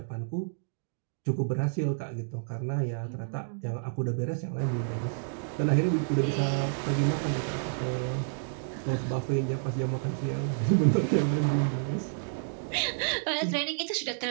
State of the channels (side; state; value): left; silent; digital silence